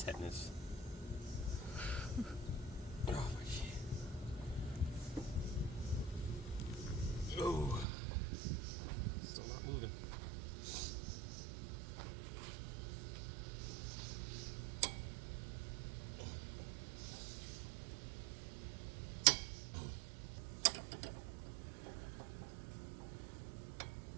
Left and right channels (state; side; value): drops out; left; at 7.9 s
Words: Oh my shit. Oh, still not moving.